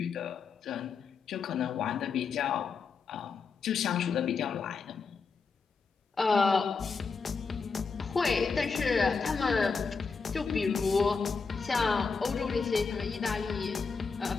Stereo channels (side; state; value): right; quieter; 5.1 dB